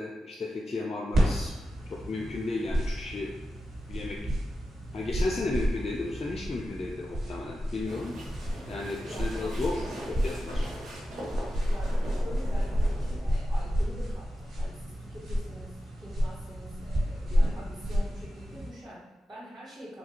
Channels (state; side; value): normal; both; correlation 0.92